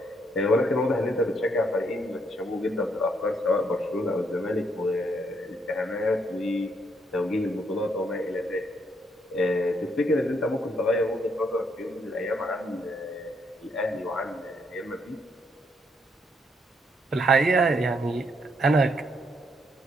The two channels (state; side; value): normal; both; correlation 0.73